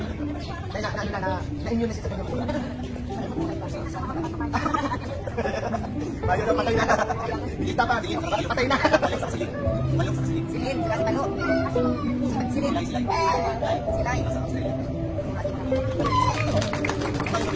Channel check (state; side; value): identical; both; correlation 1.00